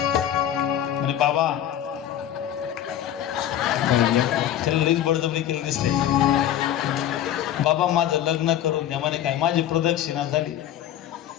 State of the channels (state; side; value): quieter; right; 11.1 dB